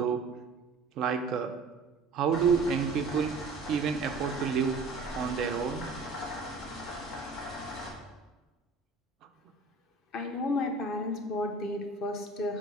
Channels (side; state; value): left; quieter; 3.7 dB